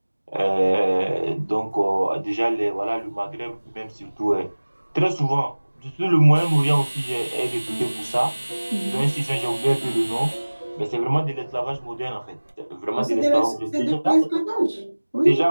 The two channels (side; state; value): both; inverted; correlation -1.00